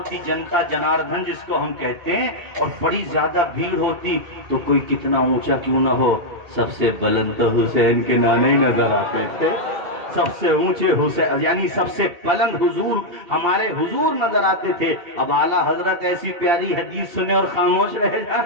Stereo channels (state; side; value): late; left; 2.8 ms